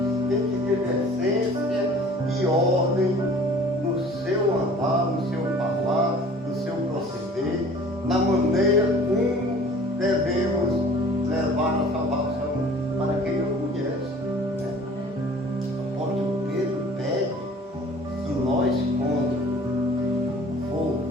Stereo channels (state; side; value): normal; both; correlation 0.48